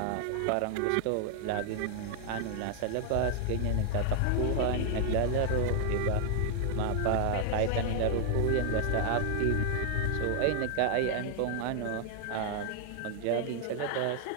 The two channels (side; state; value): both; different; correlation 0.00